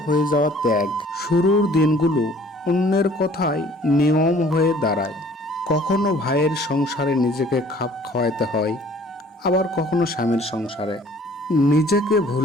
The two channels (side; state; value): both; normal; correlation 0.54